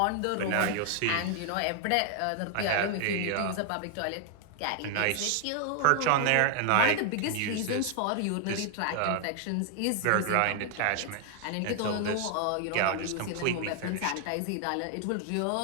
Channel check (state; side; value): different; both; correlation 0.00